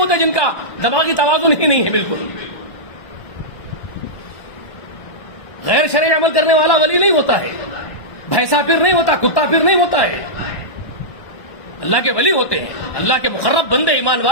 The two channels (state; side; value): late; right; 1.1 ms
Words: جن کا دماغی توازن ہی نہیں ہے بالکل، غیر شرعی عمل کرنے والا ولی نہیں ہوتا ہے، بھینسا پھر نہیں ہوتا، کتا پھر نہیں ہوتا ہے، اللہ کے ولی ہوتے ہیں، اللہ کے مقرب بندے ایمان